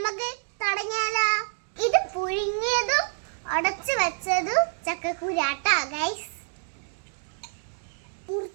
തുടങ്ങിയാലോ? ഇത് പുഴുങ്ങിയതും ഉടച്ചു വെച്ചതും ചക്കക്കുരാട്ടാ ഗൈസ്.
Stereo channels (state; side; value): silent; left; digital silence